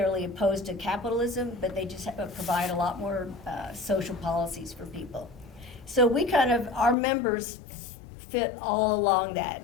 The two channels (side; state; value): right; drops out; at 7.0 s